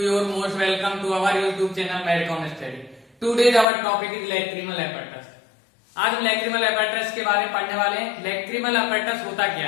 most welcome to our YouTube channel Medcom Study. Today's our topic is lacrimal apparatus. आज हम lacrimal apparatus के बारे में पढ़ने वाले हैं। lacrimal apparatus होता क्या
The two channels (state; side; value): drops out; right; at 3.7 s